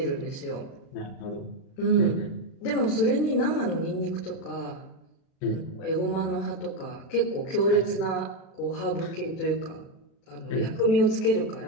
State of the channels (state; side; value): late; right; 36 ms